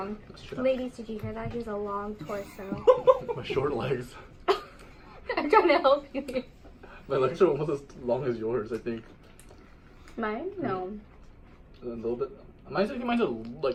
That's true. Ladies, did you hear that? He's a long torso. My short legs. I'm trying to help you here. My legs are almost as long as yours, I think. Mine? No. A little bit. Mine's are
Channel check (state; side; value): identical; both; correlation 1.00